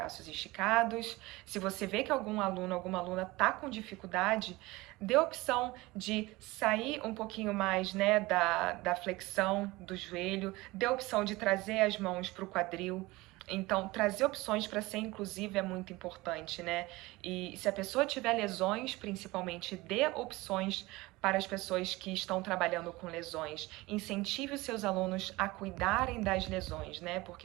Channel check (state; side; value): quieter; left; 21.0 dB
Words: esticados. Se você vê que algum aluno, alguma aluna tá com dificuldade, dê a opção de sair um pouquinho mais, né, da flexão do joelho, dê a opção de trazer as mãos para o quadril. Então, trazer opções para ser inclusivo é muito importante, né? E se a pessoa tiver lesões, principalmente, dê opções para as pessoas que estão trabalhando com lesões. Incentive os seus alunos a cuidarem das lesões, né?